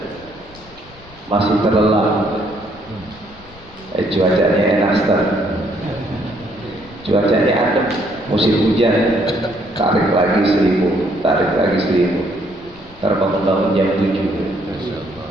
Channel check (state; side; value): noise; left; rumble, 23 dB below the sound